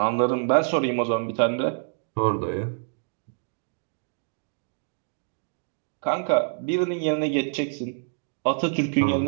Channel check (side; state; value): left; silent; 61 dB below the other